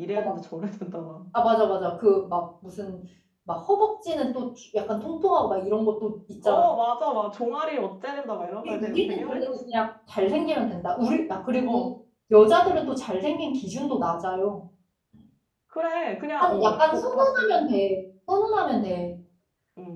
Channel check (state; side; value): identical; both; correlation 1.00